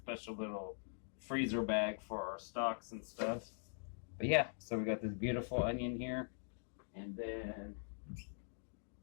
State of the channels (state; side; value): silent; right; digital silence